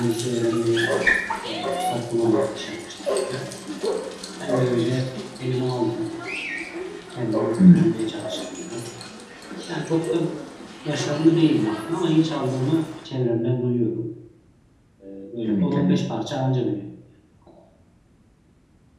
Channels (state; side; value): identical; both; correlation 1.00